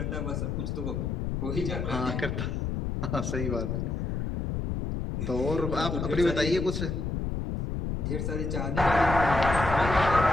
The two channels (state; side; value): noise; left; rumble, 2 dB below the sound